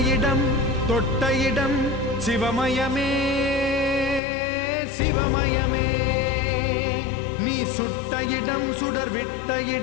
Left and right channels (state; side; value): drops out; right; at 4.2 s